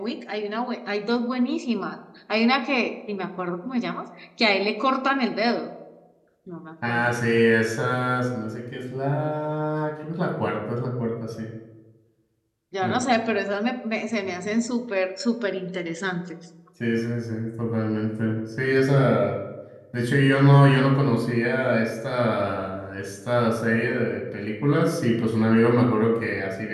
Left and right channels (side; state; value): both; identical; correlation 1.00